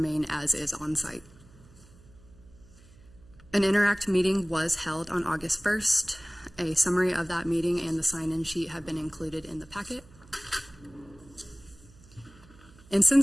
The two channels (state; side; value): noise; right; hum, 24 dB below the sound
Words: as is on site. An Interact meeting was held on August 1st. A summary of that meeting and the sign-in sheet have been included in the packet. And